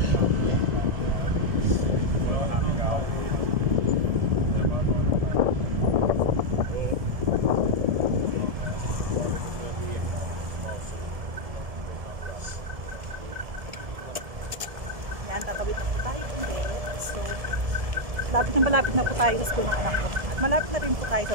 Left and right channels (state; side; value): late; left; 1.7 ms